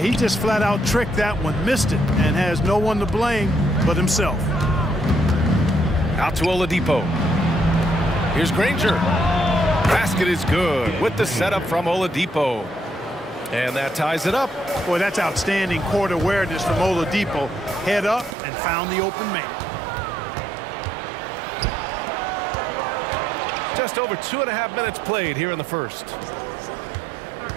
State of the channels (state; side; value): drops out; left; at 18.4 s